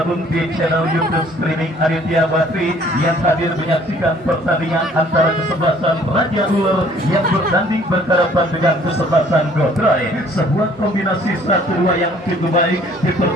di channel YouTube streaming Aditya Bakri yang hadir menyaksikan pertandingan antara kesebelasan Raja Ular yang bertanding berhadapan dengan kesebelasan Gotroy. Sebuah kombinasi 1-2 yang cukup baik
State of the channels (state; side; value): normal; both; correlation 0.57